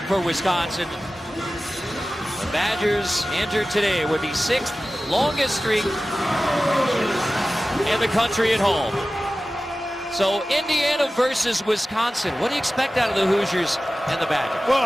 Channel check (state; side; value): normal; both; correlation 0.96